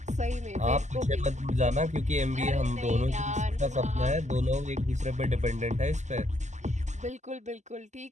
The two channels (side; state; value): left; late; 0.34 ms